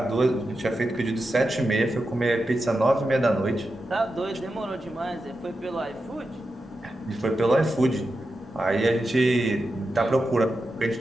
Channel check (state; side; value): normal; both; correlation 0.89